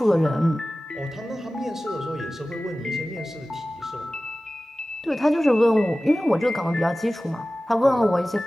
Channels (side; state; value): both; normal; correlation 0.97